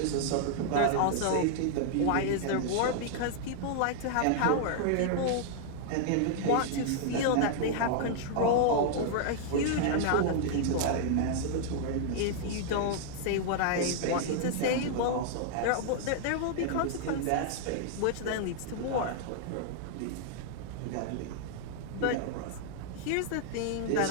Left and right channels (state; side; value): different; both; correlation -0.01